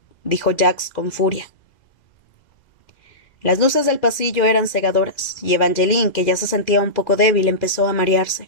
dijo Jax con furia. Las luces del pasillo eran cegadoras, y Evangeline, que ya se sentía un poco débil, empezó a marearse.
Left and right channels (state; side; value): late; right; 2.4 ms